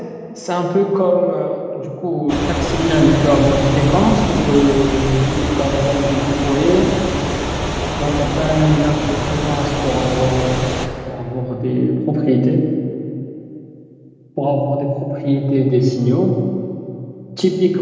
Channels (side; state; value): both; identical; correlation 1.00